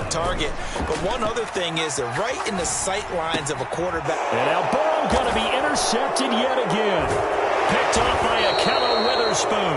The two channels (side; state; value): both; identical; correlation 1.00